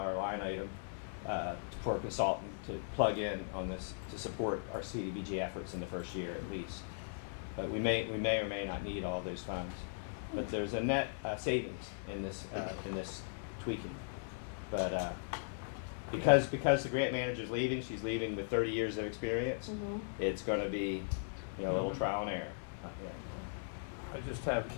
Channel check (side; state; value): right; silent; digital silence